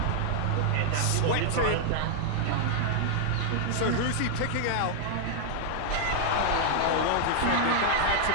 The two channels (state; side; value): different; both; correlation 0.00